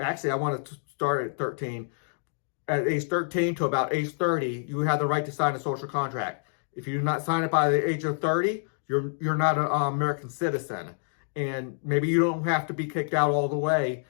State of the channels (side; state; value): right; silent; digital silence